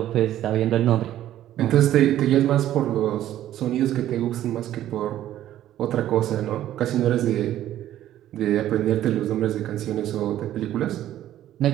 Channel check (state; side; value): quieter; left; 12.6 dB